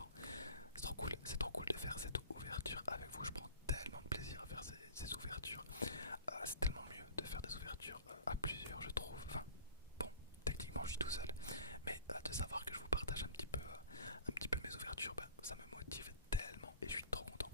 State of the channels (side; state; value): both; inverted; correlation -0.43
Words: C'est trop cool de faire cette ouverture avec vous. Je prends tellement de plaisir à faire ces ouvertures. C'est tellement mieux de faire des ouvertures à plusieurs, je trouve. Enfin, bon, techniquement je suis tout seul, mais de savoir que je vous partage un petit peu mes ouvertures, ça me motive tellement et je suis trop content.